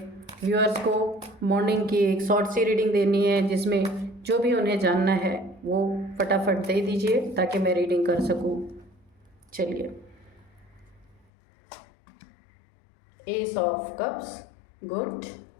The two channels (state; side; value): drops out; right; at 11.2 s